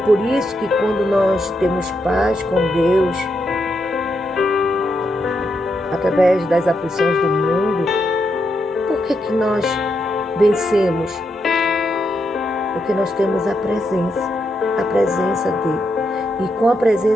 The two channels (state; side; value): normal; both; correlation 0.82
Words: isso que quando nós temos paz com Deus, através das aflições do mundo, por que nós vencemos? Porque nós temos a presença dele. E com a